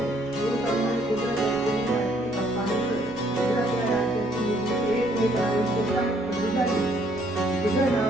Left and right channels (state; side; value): normal; both; correlation 0.66